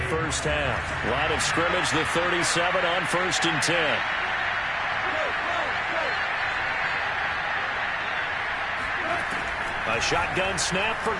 first half. Line of scrimmage, the 37 on 1st and 10. A shotgun snap for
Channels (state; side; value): noise; right; hum, 22 dB below the sound